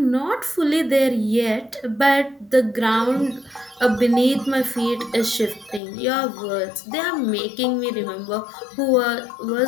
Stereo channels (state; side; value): drops out; right; at 5.8 s